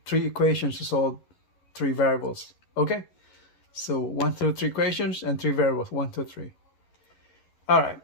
3 equations to solve 3 variables. Okay, so 1 through 3 equations and 3 variables, 1, 2, 3. All right,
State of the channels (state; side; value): late; right; 11 ms